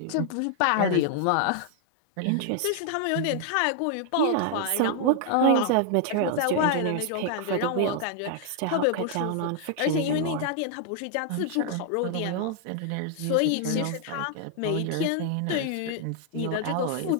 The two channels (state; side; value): different; both; correlation 0.00